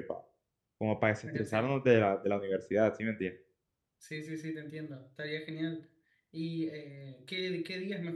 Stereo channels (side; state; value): both; identical; correlation 1.00